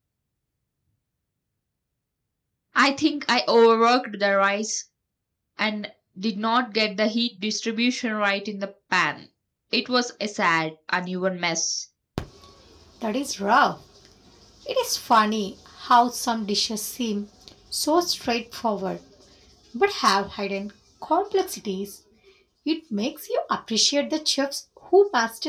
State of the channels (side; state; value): both; identical; correlation 1.00